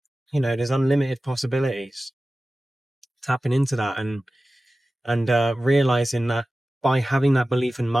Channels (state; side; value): normal; both; correlation 0.96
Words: there's unlimited possibilities. Tapping into that and realizing that by having that belief and